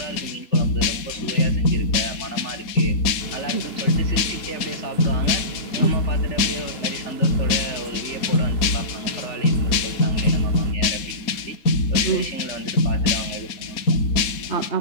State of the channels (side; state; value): right; late; 4.1 ms